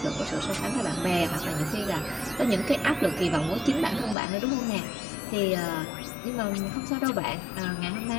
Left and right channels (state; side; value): drops out; right; at 4.2 s